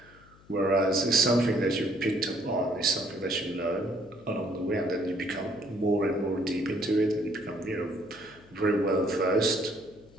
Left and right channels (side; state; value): left; noise; hum, 26 dB below the sound